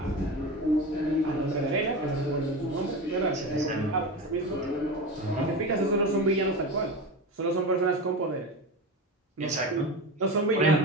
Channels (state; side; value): normal; both; correlation 0.25